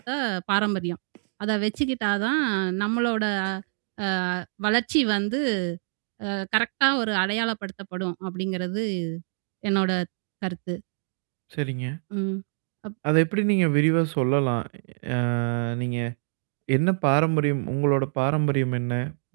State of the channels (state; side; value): silent; left; digital silence